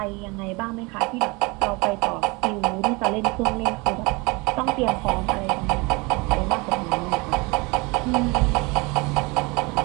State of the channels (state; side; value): quieter; left; 26.4 dB